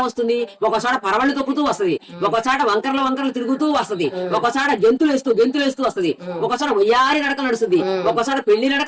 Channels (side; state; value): both; identical; correlation 1.00